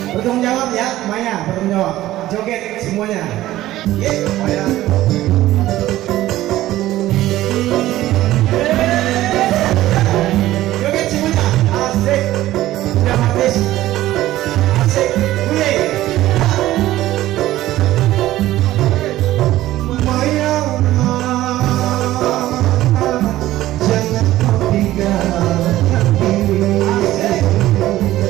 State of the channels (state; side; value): quieter; left; 15.1 dB